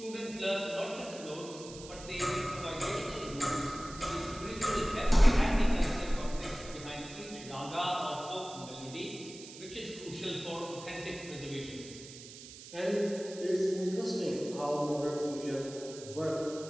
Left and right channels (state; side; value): noise; right; hiss, 15 dB below the sound